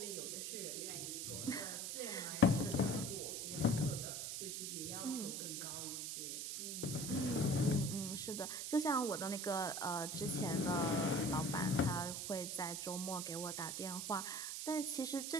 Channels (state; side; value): noise; right; hiss, 4 dB below the sound